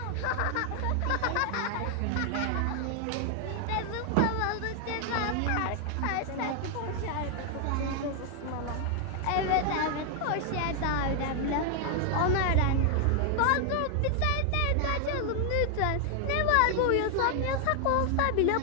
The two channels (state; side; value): different; both; correlation 0.00